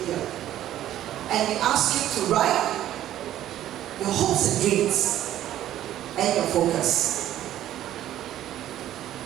year. And we asked you to write your hopes and dreams and your focus.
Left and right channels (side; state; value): left; quieter; 12.5 dB